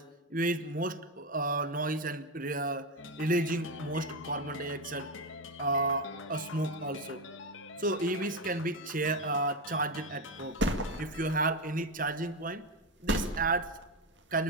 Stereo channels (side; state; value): both; normal; correlation 0.13